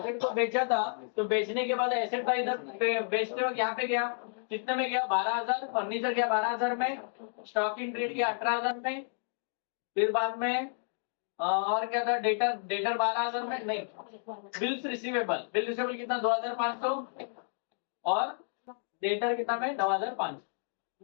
को बेचा था, तो बेचने के बाद एसेट था इधर बेचते वक्त यहाँ पे गया, कितने में गया? 12,000। फर्नीचर गया 12,000 में, स्टॉक इन ट्रेड गया 18,000 में, फिर बाद में और क्या था? डेटर, डेटर 12,000 में नहीं, बिल्स रिसीवेबल, बिल रिसीवेबल कितना? 2,500, और डेटर कितना में? 9,500।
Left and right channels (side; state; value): right; silent; digital silence